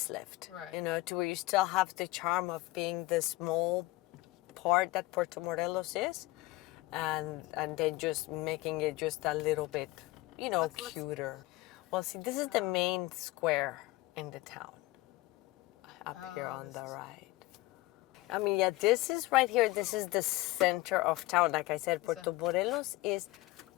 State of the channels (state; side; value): quieter; right; 20.0 dB